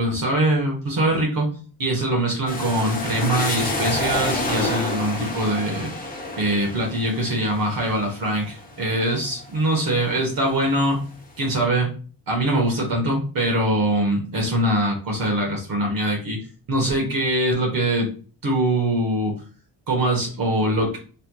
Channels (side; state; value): both; normal; correlation 0.15